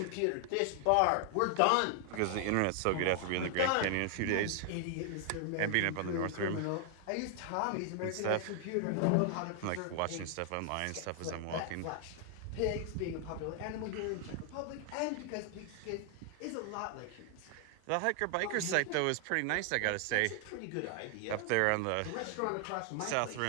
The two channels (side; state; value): both; different; correlation 0.00